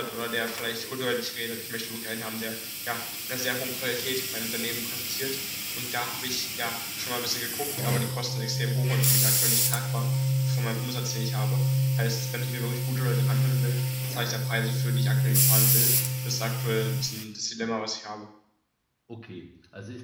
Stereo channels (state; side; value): identical; both; correlation 1.00